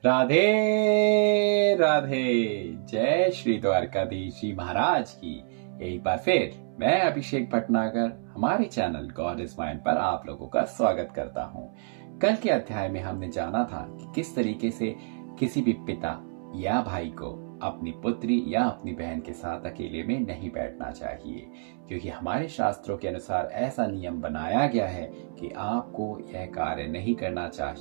राधे राधे। जय श्री द्वारकाधीश जी महाराज की। एक बार फिर मैं अभिषेक भटनागर हमारे चैनल गॉड इज माइंड पर आप लोगों का स्वागत करता हूं। कल के अध्याय में हमने जाना था कि किस तरीके से किसी भी पिता या भाई को अपनी पुत्री या अपनी बहन के साथ अकेले में नहीं बैठना चाहिए, क्योंकि हमारे शास्त्रों के अनुसार ऐसा नियम बनाया गया है कि आपको यह कार्य नहीं करना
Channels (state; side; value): silent; left; 60 dB below the other